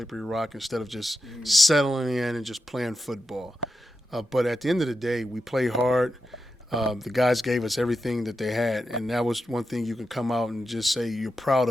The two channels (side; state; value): both; normal; correlation 0.88